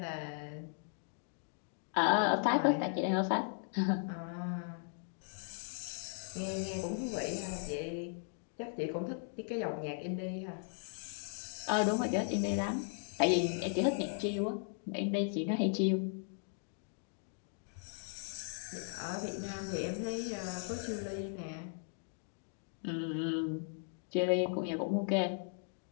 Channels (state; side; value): silent; right; 53 dB below the other